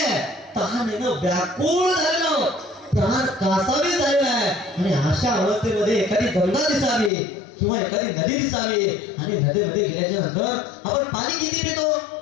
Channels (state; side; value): drops out; right; at 7.1 s